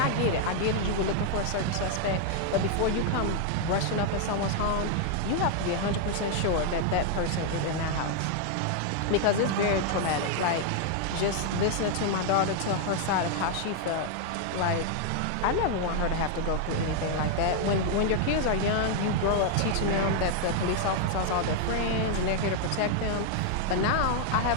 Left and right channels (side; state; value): both; different; correlation 0.00